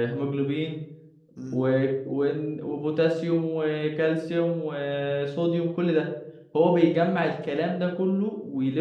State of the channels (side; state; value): both; identical; correlation 1.00